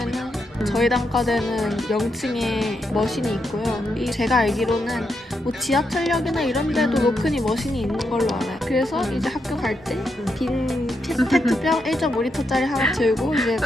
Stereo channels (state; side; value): normal; both; correlation 0.82